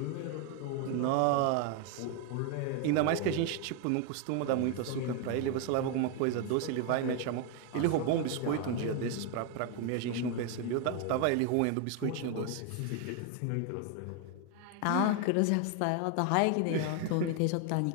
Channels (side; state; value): both; different; correlation 0.01